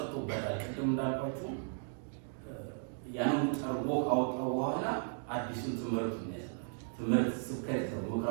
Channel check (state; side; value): silent; left; digital silence